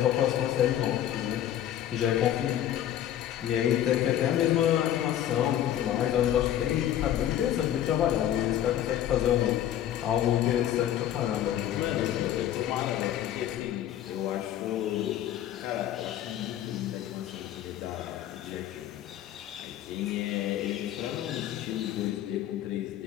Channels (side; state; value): right; quieter; 11.5 dB